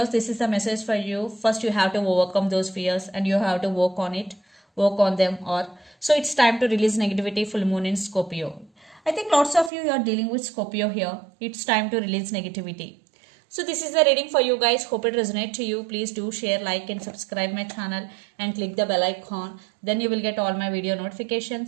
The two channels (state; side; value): drops out; left; at 9.7 s